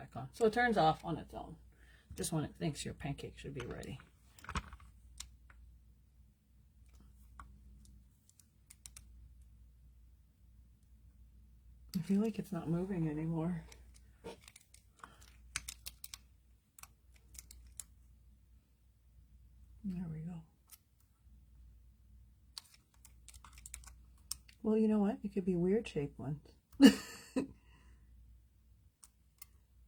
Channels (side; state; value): both; identical; correlation 1.00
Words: on. So it turns off on its own. Just when it thinks your pancake should be ready. I feel like it's not moving anymore. There we go. Well, you know what? It could be weird shaped ones. This